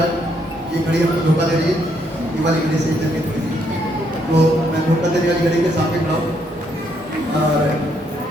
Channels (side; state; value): both; normal; correlation 0.73